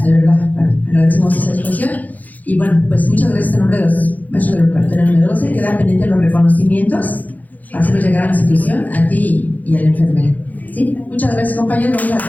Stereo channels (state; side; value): late; right; 0.080 ms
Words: de verdad, agradecemos esa disposición. Y bueno, pues muchas gracias en nombre de los maestros del preparatorio número 12. Quedan pendientes los reconocimientos para hacerlos llegar a la institución, a ti y a la enfermera. ¿Sí? Muchas gracias, compañeros. Vamos